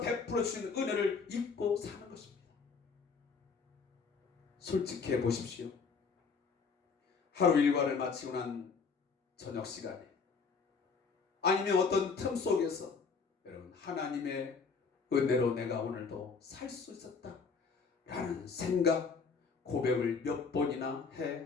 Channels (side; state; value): right; quieter; 5.2 dB